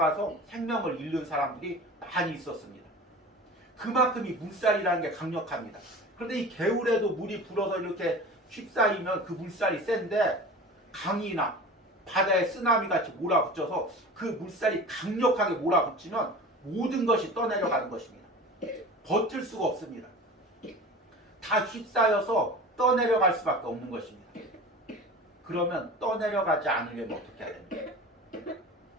생명을 잃는 사람들이 많이 있었습니다. 그만큼 이 물살이라는 게 강력합니다. 그런데 이 개울에도 물이 불어서 이렇게 휩싸이면 그 물살이 센데 강이나 바다에 쓰나미 같이 몰아붙여서 그 물살이 강력하게 몰아붙이면 모든 것이 떠내려가는 것입니다. 버틸 수가 없습니다. 다 휩싸여서 떠내려갈 수밖에 없는 것입니다. 그러면 떠내려가지 않으려면 어떻게 해야 됩니까?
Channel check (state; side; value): normal; both; correlation 0.36